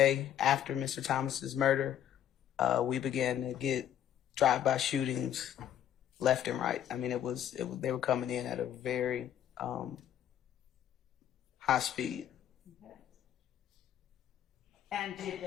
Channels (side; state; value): right; quieter; 10.5 dB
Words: after Mr. Thomas's murder, we began to get drive-by shootings left and right. I mean, they were coming in at a very high speed. Okay. And did